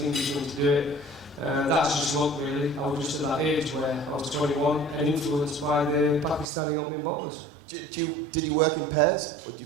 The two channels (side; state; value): left; drops out; at 6.5 s